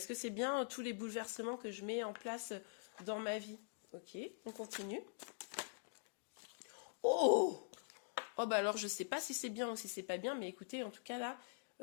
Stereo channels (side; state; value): right; silent; digital silence